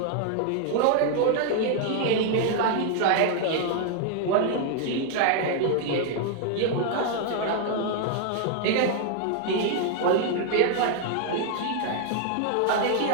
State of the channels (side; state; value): both; different; correlation 0.00